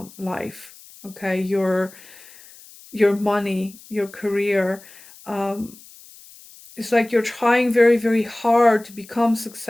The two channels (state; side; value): noise; left; hiss, 22 dB below the sound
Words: life. Okay, your money, your career. Um, it's like you're trying very, very hard to become